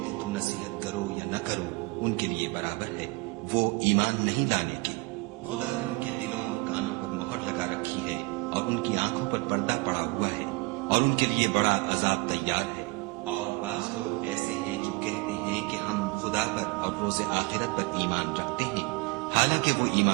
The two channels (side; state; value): left; quieter; 26.1 dB